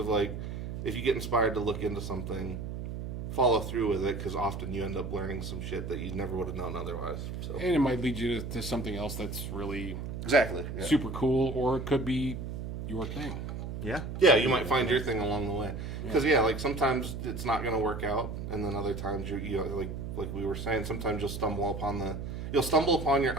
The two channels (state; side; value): noise; right; hum, 6 dB below the sound